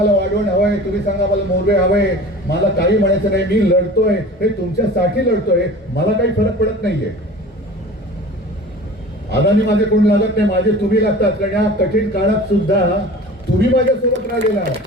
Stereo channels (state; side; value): normal; both; correlation 0.40